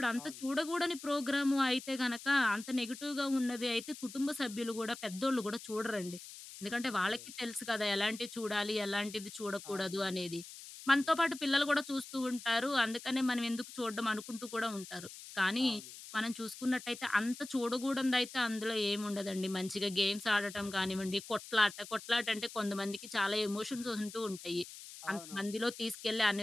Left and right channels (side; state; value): left; noise; hiss, 14 dB below the sound